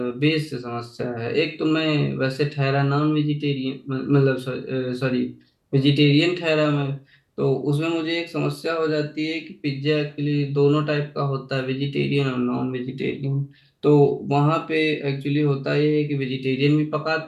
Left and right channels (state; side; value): identical; both; correlation 1.00